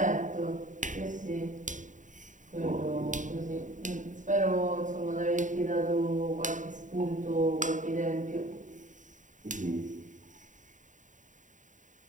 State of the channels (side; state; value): left; late; 0.36 ms